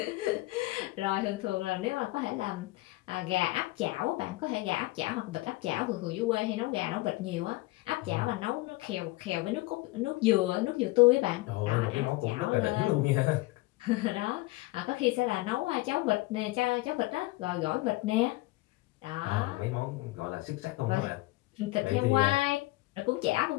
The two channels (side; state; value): right; quieter; 20.9 dB